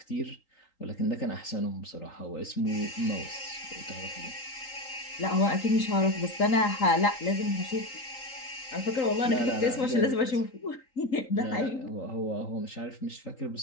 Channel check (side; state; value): right; late; 3.8 ms